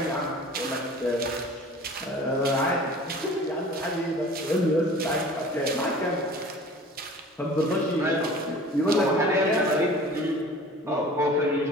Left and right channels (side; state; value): both; normal; correlation 0.44